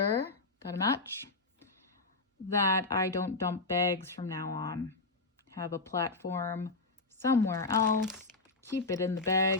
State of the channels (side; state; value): right; quieter; 3.6 dB